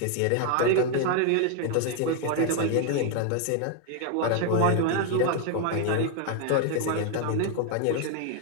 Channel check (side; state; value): both; different; correlation 0.01